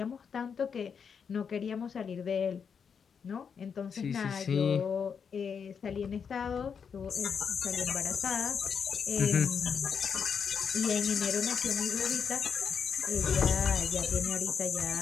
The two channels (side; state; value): right; quieter; 6.6 dB